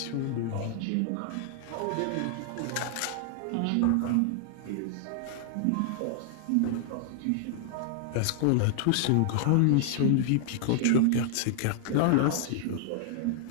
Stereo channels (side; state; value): both; different; correlation -0.01